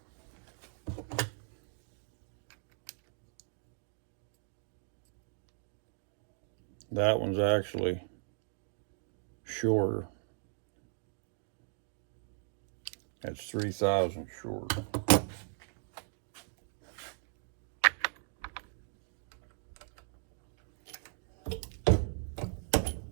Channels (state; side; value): silent; left; 53 dB below the other